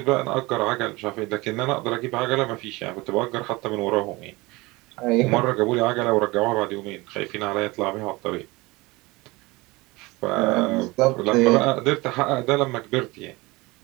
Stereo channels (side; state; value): left; quieter; 22.8 dB